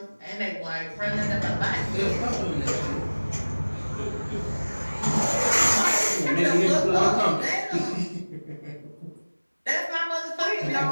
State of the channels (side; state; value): both; inverted; correlation -1.00